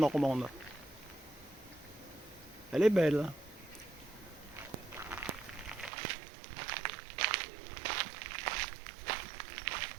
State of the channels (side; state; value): left; drops out; at 5.9 s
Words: Elle est belle.